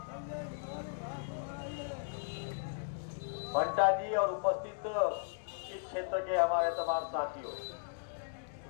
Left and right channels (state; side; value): silent; right; digital silence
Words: बंटा जी और उपस्थित इस क्षेत्र के हमारे तमाम साथियों,